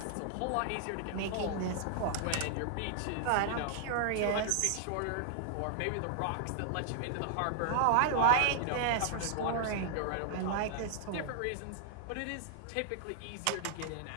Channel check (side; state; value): both; different; correlation -0.01